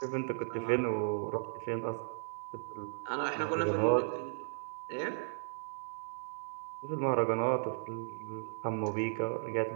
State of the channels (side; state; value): left; silent; digital silence